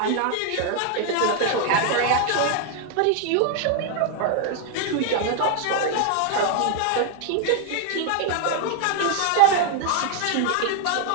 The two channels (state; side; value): different; both; correlation 0.00